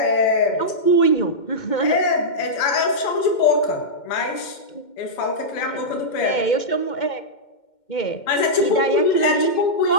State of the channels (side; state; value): right; late; 2.1 ms